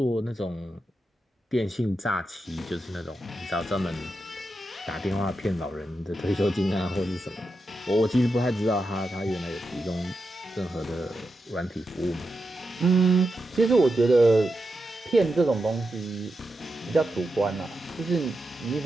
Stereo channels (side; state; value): both; normal; correlation 0.88